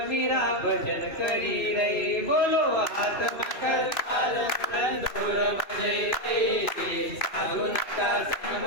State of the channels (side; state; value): right; late; 2.7 ms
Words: मीरा भजन करी रे बोलो हात करतार तंदूर बजै रे साधू नका संग